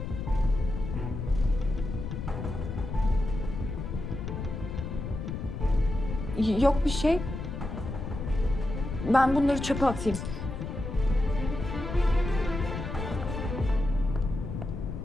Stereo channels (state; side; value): noise; left; rumble, 5 dB below the sound